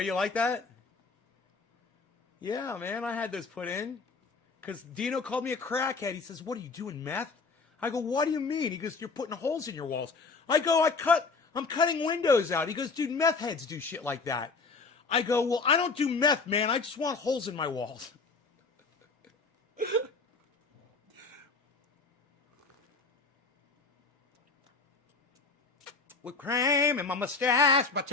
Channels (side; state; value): right; quieter; 4.3 dB